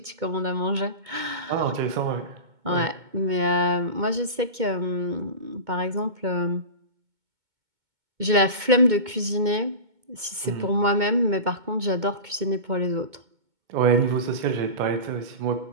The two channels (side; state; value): left; late; 2.2 ms